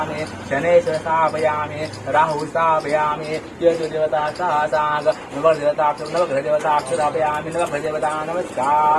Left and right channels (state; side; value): identical; both; correlation 1.00